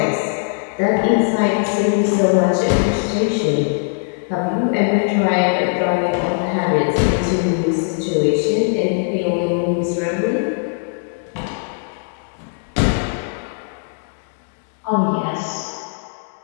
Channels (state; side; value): silent; right; 66 dB below the other